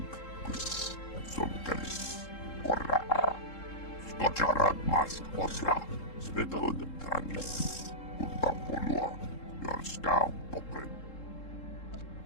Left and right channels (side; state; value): right; late; 3.7 ms